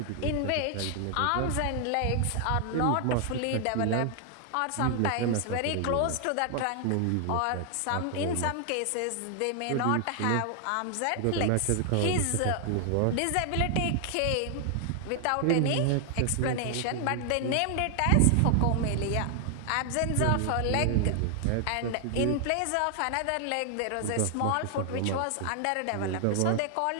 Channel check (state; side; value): different; both; correlation 0.00